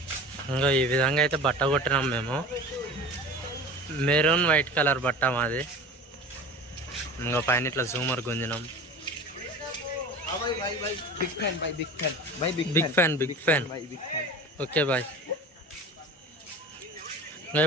ఇంకా ఈ విధంగా అయితే బట్ట కొట్టినాం మేము. మెరూన్ వైట్ కలర్ బట్ట మాది. ఇంకా పైన ఇట్లా జూమర్ గుంజినాం. Big fan. Okay bye. ఇంకా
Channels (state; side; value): normal; both; correlation 0.36